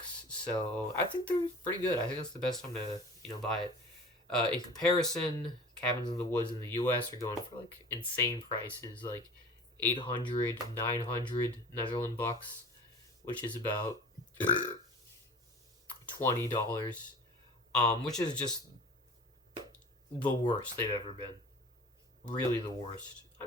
so I think they're pretty good. I think that's the best time to buy it. In comparison, cabins in the woods in the U.S. are going for like insane prices, like 800, 900 Netherlands bucks, which is about $20, which is just the worst they've ever been. Really the worst. I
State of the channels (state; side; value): normal; both; correlation 0.41